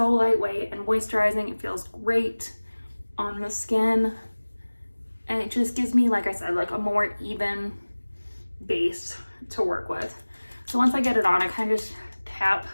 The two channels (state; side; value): inverted; both; correlation -1.00